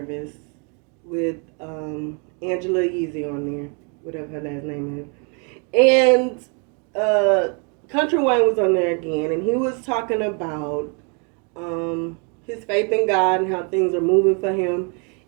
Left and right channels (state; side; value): quieter; left; 36.7 dB